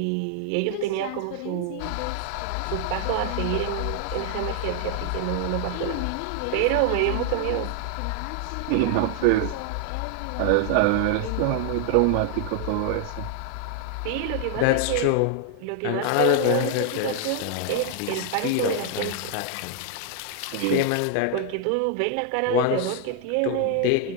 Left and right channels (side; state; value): both; different; correlation 0.00